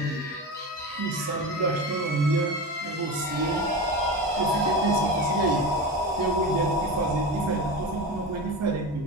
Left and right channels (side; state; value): both; normal; correlation 0.24